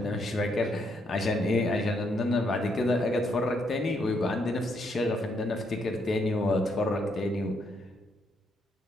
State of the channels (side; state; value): both; normal; correlation 0.75